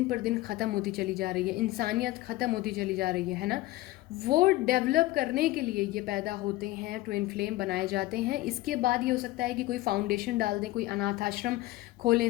पर दिन ख़त्म होती चली जा रही है, इंसानियत ख़त्म होती चली जा रही है ना, वो डेवलप करने के लिए ये पैदा होते हैं, ट्विन फ्लेम बनाए जाते हैं। इसके बाद ये हो सकता है कि कोई फाउंडेशन डाल दें, कोई अनाथ आश्रम खोलें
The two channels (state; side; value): quieter; right; 17.8 dB